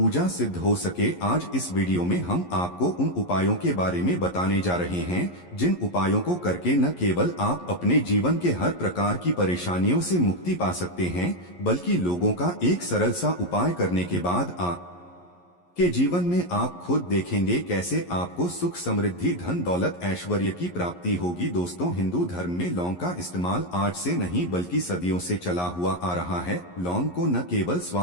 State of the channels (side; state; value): right; late; 11 ms